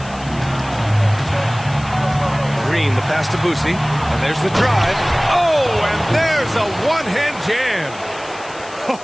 Green, the pass to Boosie. And there's the drive. Oh, and there's a one-hand jam.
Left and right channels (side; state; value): left; noise; hiss, 20 dB below the sound